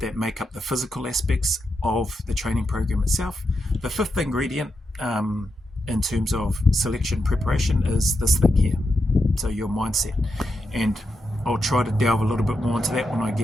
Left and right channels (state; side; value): normal; both; correlation 0.85